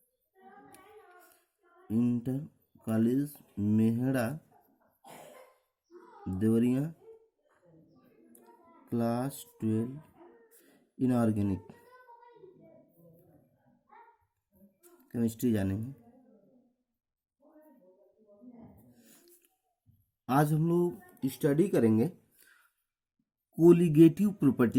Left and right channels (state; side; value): identical; both; correlation 1.00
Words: college Mehda Deoria class 12 inorganic chemistry जानेंगे। आज हम लोग स्टडी करेंगे कोलिगेटिव